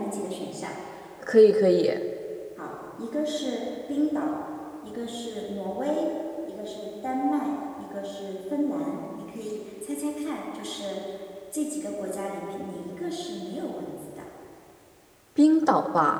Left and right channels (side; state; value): both; identical; correlation 1.00